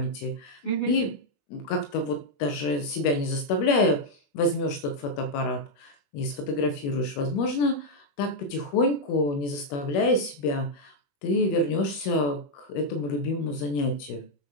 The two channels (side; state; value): right; late; 21 ms